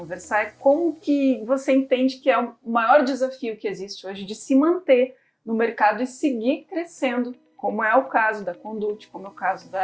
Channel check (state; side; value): identical; both; correlation 1.00